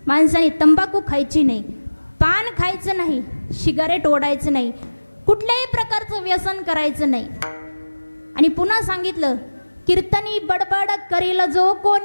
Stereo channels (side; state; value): both; inverted; correlation -1.00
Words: माणसाने तंबाखू खायची नाही, पान खायचं नाही, सिगारेट ओढायचं नाही, कुठल्याही प्रकारचं व्यसन करायचं नाही. आणि पुन्हा सांगितलं, कीर्तनी बडबड करील जो